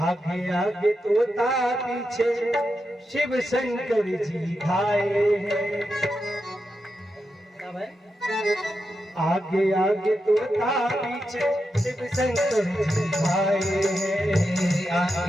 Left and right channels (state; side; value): normal; both; correlation 0.87